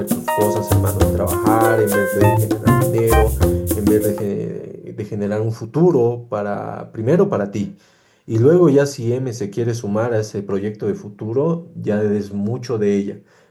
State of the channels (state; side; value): identical; both; correlation 1.00